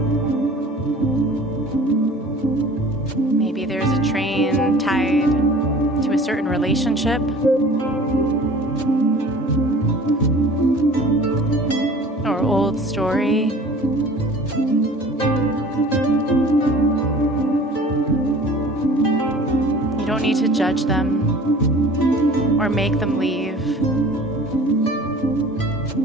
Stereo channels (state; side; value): normal; both; correlation 0.44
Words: Maybe there's a train tied to a certain relationship or old story. You don't need to judge them or make them leave.